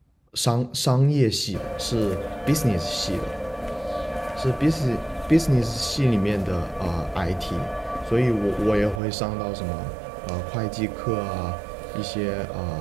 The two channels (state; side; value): drops out; left; at 9.0 s